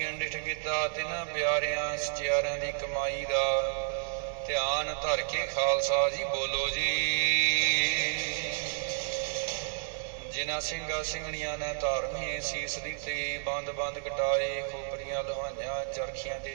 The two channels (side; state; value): left; silent; digital silence